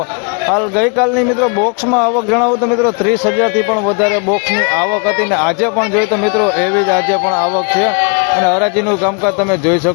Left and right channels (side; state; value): right; quieter; 36.1 dB